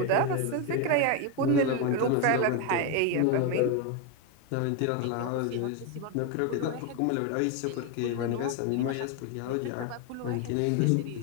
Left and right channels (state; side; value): different; both; correlation 0.02